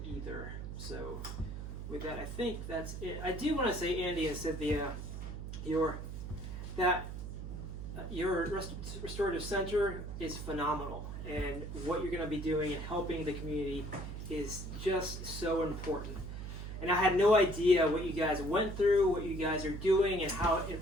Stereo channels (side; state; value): right; noise; hum, 7 dB below the sound